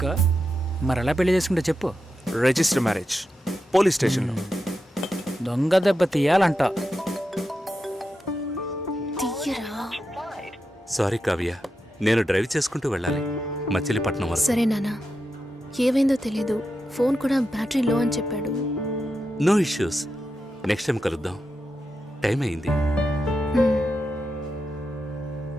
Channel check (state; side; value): normal; both; correlation 0.88